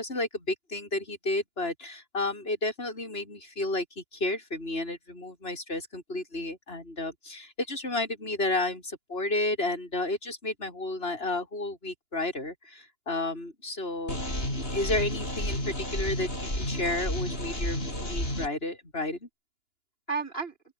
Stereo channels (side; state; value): right; late; 2.9 ms